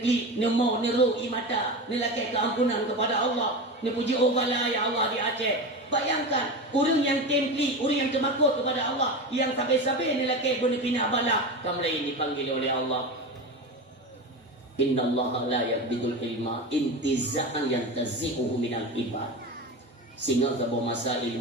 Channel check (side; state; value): both; normal; correlation 0.25